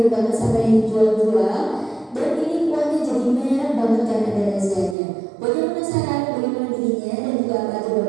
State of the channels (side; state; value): left; drops out; at 5.0 s